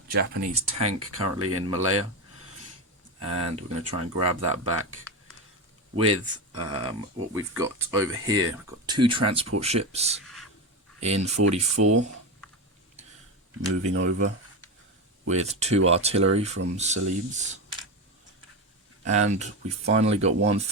Japanese tank currently in Malaya, and we're going to try and grab that back with what we've got over here. We've got 2 transport ships in 44 moving over with 2 artillery from Celebes, and we finally got 1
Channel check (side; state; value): both; normal; correlation 0.17